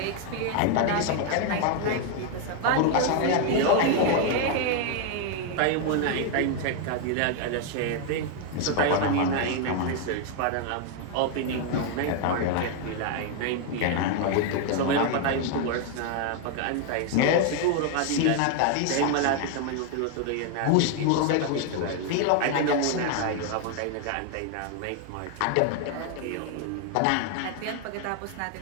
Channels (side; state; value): both; different; correlation 0.00